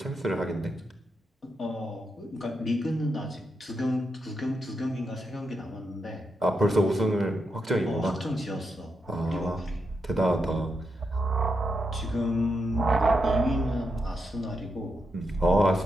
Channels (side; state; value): both; normal; correlation 0.84